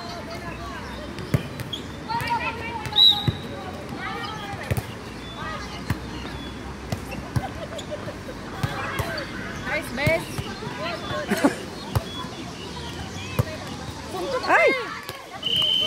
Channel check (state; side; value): identical; both; correlation 1.00